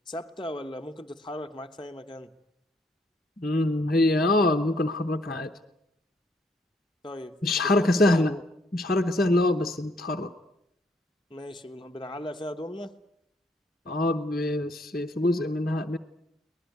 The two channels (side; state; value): both; normal; correlation 0.69